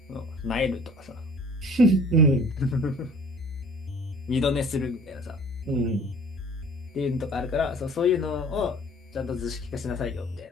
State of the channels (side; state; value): both; normal; correlation 0.50